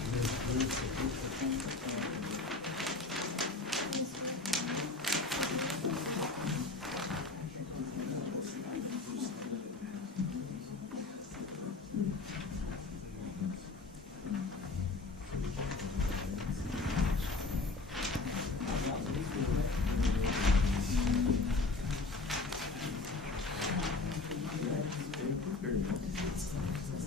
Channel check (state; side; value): quieter; right; 3.6 dB